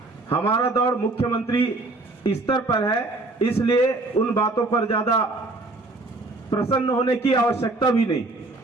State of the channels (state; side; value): quieter; left; 3.0 dB